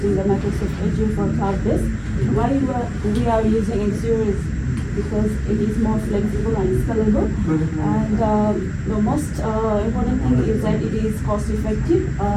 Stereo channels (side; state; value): both; identical; correlation 1.00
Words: the Microsoft Azure for cloud-based. Why we are using Azure is because it is more flexible and scalable. And the most important thing is that it is cost-effective.